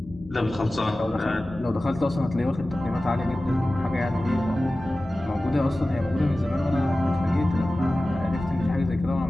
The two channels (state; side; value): normal; both; correlation 0.96